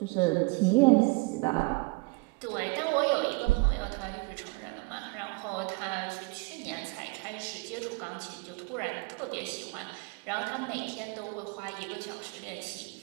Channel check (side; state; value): left; quieter; 26.9 dB